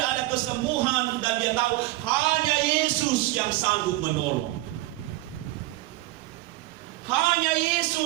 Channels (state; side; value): quieter; left; 18.3 dB